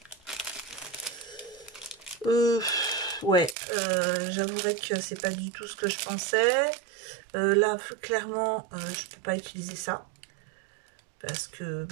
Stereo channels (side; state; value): left; drops out; at 3.6 s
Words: Ouais, j'avouerais que c'est pas du tout ce que je pensais. Là, clairement, je peux pas utiliser ça. Parce que